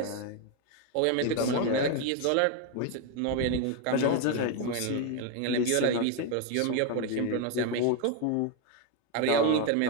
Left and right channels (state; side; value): different; both; correlation 0.01